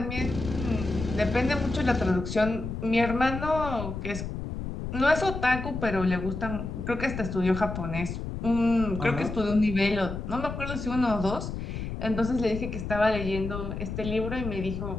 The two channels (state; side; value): noise; left; rumble, 6 dB below the sound